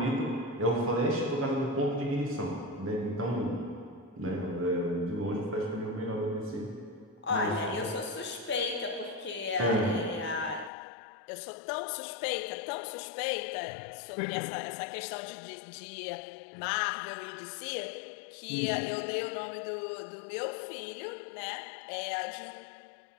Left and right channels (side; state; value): right; drops out; at 10.7 s